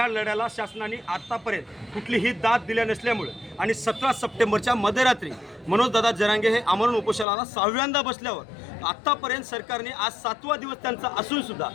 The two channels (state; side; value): drops out; right; at 7.2 s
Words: लढ्याला शासनाने आतापर्यंत कुठलीही दाद दिल्या नसल्यामुळे आणि 17 सप्टेंबरच्या मध्यरात्री मनोजदादा जरांगे हे आमरण उपोषणाला 6व्यांदा बसल्यावर आत्तापर्यंत सरकारने आज 7वा दिवस त्यांचा असून सुद्धा